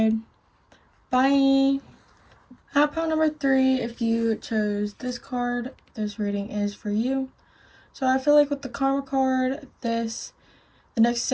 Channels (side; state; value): both; identical; correlation 1.00